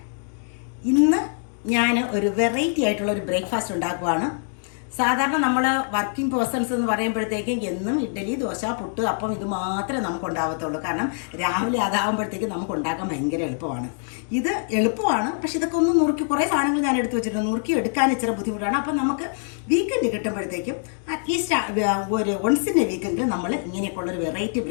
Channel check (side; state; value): right; silent; 62 dB below the other